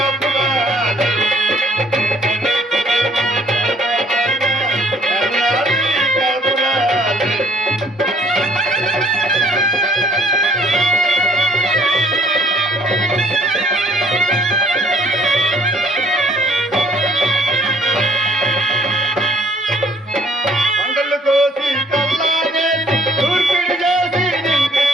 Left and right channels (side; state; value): both; normal; correlation 0.61